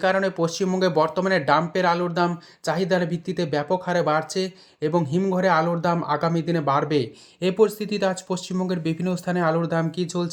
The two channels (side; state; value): both; identical; correlation 1.00